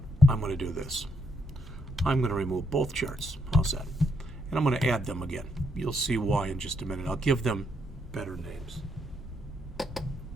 I'm going to do this. I'm going to remove both charts. How's that? And I'm going to add them again. You'll see why in just a minute. I'll give them better names.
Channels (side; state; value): both; normal; correlation 0.76